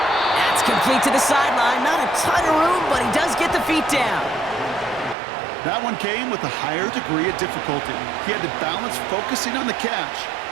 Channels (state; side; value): drops out; left; at 5.2 s